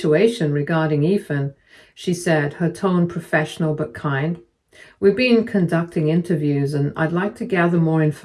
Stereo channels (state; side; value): identical; both; correlation 1.00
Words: regarding Ethan," she said, her tone professional but kind. "We've been conducting interviews and I'd like to gather more